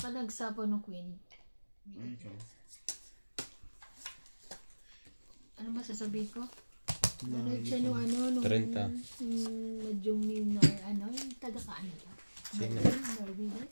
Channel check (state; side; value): inverted; both; correlation -1.00